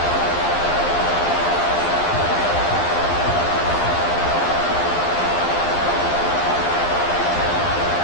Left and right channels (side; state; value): right; late; 11 ms